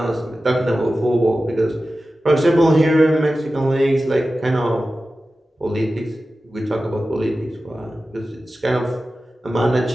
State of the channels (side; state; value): both; normal; correlation 0.94